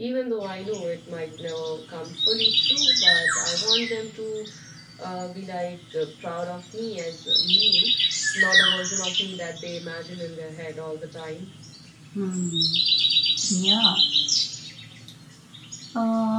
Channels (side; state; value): both; identical; correlation 1.00